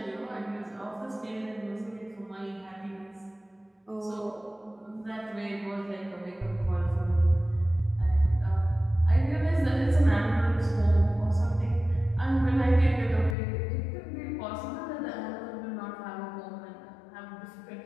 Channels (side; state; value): right; drops out; at 13.4 s